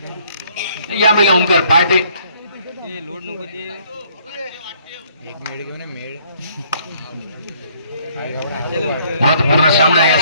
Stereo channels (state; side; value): inverted; both; correlation -0.63